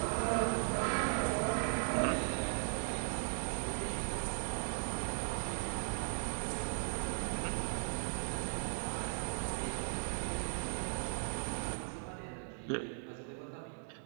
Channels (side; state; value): left; silent; 52 dB below the other